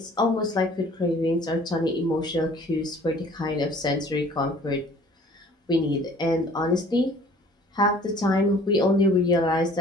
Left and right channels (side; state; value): both; normal; correlation 0.52